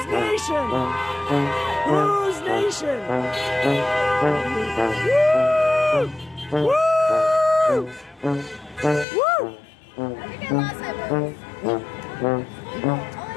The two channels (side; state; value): right; drops out; at 9.1 s